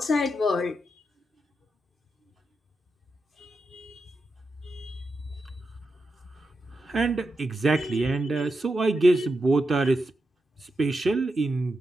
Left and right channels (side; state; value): both; normal; correlation 0.87